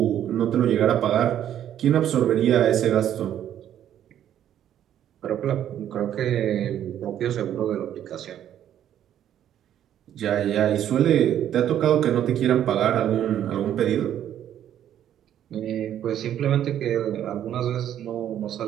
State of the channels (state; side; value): quieter; left; 10.7 dB